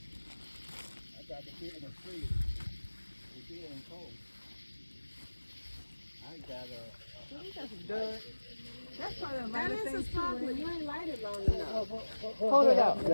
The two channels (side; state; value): both; inverted; correlation -1.00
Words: I got the beer in the freezer. The beer and cold. I got That's probably a That is a spark, but you ain't light it long enough. Hold it out.